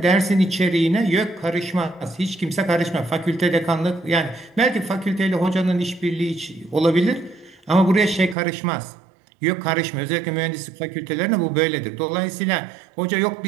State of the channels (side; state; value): left; drops out; at 8.3 s